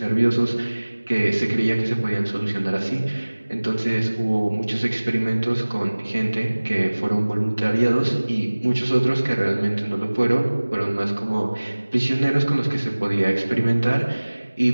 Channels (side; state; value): both; inverted; correlation -1.00